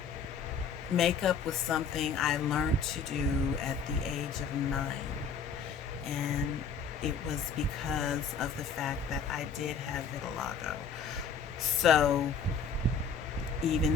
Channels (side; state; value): right; quieter; 5.5 dB